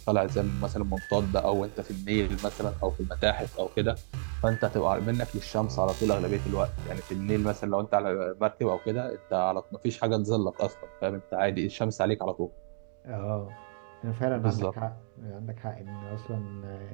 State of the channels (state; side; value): silent; left; digital silence